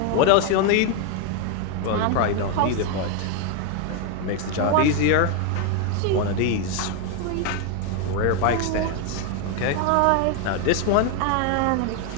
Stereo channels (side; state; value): both; different; correlation 0.01